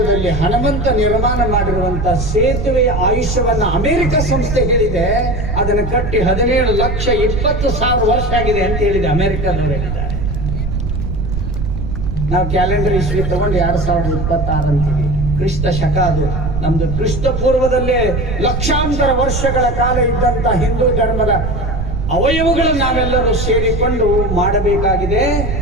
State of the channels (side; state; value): right; noise; rumble, 3 dB below the sound